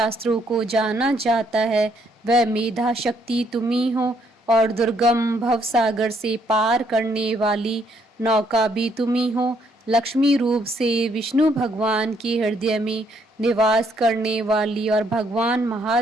को जाना जाता है, वह मेधा शक्ति तुम ही हो, और दुर्गम भवसागर से पार करने वाली नौका भी तुम ही हो। लक्ष्मी रूप से विष्णु भगवान के हृदय में निवास करने वाली और भगवान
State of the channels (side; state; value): both; normal; correlation 0.70